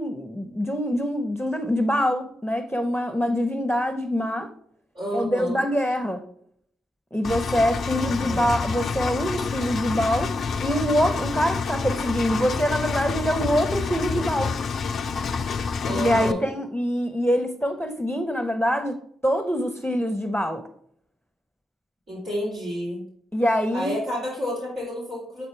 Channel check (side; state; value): both; normal; correlation 0.86